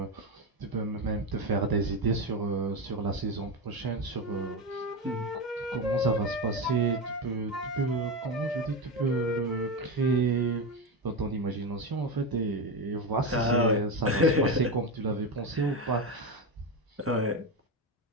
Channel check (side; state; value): both; normal; correlation 0.16